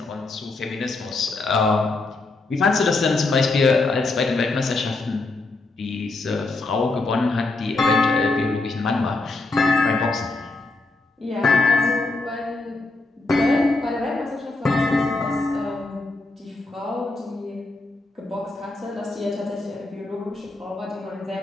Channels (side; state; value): right; quieter; 3.3 dB